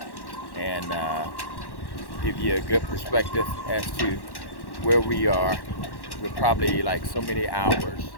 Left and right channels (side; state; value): right; late; 1.1 ms